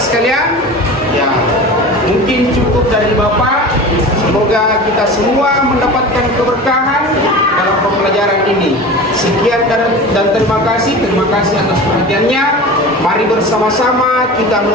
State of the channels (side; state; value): both; normal; correlation 0.34